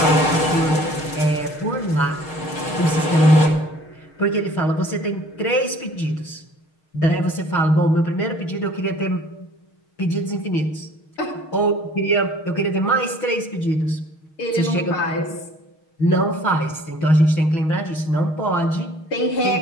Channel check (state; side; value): late; right; 6.4 ms